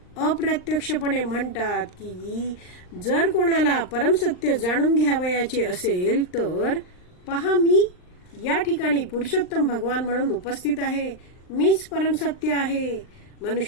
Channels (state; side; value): late; right; 39 ms